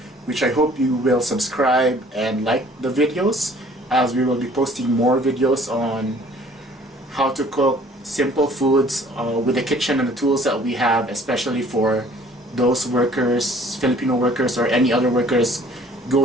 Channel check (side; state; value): both; normal; correlation 0.55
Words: which I hope you will subscribe and like the videos, as we will be posting more videos on how to cook simple foods with the kitchen and the tools that we have, especially for those workers, Filipino workers or any other workers